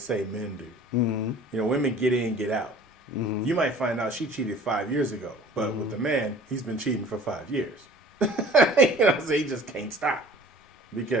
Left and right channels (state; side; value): normal; both; correlation 0.47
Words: men do. You know, women get in, get out. You might find out she cheated 5 years ago, but with the man, he's been cheating for 5 years. So he just can't stop